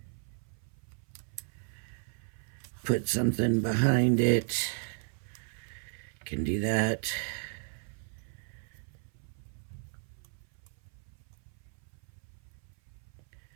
Put something behind it. Can do that.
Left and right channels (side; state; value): left; silent; 55 dB below the other